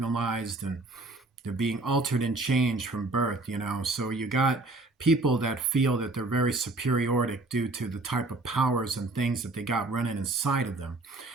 and They're being altered and changed from birth, So you got people that feel that they're very superioric due to the type of powers and things that they got running inside of them.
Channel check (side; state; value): left; quieter; 3.1 dB